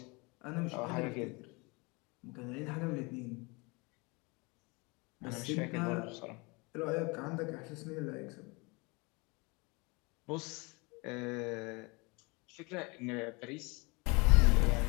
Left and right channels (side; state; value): right; quieter; 27.8 dB